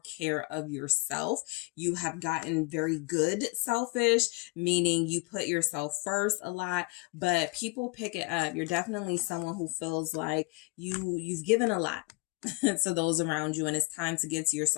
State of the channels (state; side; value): quieter; right; 28.3 dB